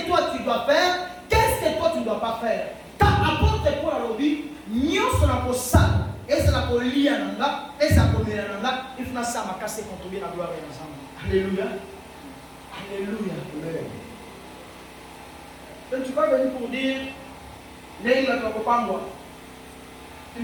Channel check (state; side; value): identical; both; correlation 1.00